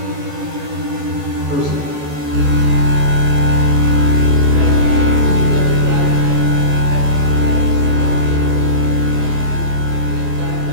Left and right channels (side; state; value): left; late; 14 ms